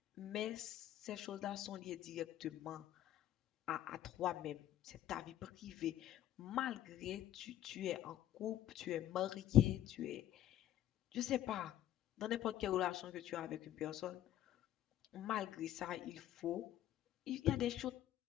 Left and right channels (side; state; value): right; quieter; 12.6 dB